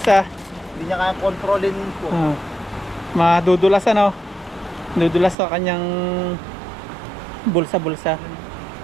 hindi niya kaya kontrolin po. Madudulas ano. Dudulas sa kanyang bulsa-bulsa.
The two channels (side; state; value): left; drops out; at 5.4 s